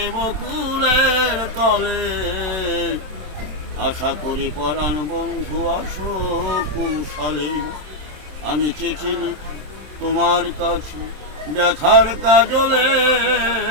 বকুলের তলে, আশা করি পরাণ বন্ধু আসো কুশলে। আমি চিঠি লিখি তোমার কাছে ব্যথার কাজলে,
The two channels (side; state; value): left; late; 27 ms